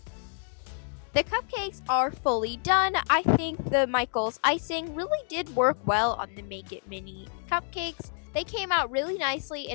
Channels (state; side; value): silent; right; 59 dB below the other